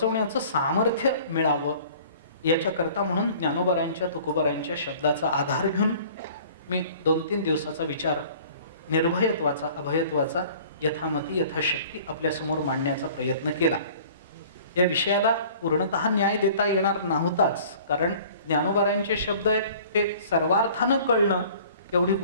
सामर्थ्य मिळावं याच्याकरता म्हणून ज्ञानोबरायांच्या तुकोबरायांच्या शब्दाचा आधार घेऊन मी 2-3 दिवसाचा विचार निर्भयत्वाचा, अभयत्वाचा यथामती यथाशक्ती आपल्यासमोर मांडण्याचा प्रयत्न केला. या विषयाला पूर्णतः न्याय देता येणार नव्हताच, कारण ज्ञानोबारायांचे शब्द आहेत ते सर्वार्थानं कळणं एवढी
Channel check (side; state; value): both; inverted; correlation -0.49